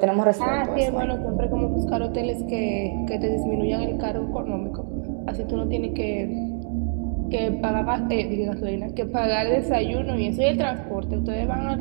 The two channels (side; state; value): left; silent; 62 dB below the other